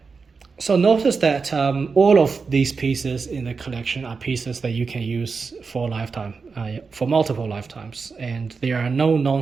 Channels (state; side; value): quieter; left; 4.9 dB